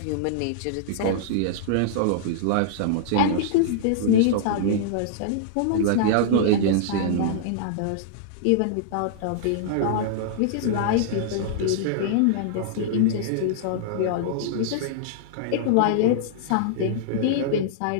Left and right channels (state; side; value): different; both; correlation -0.02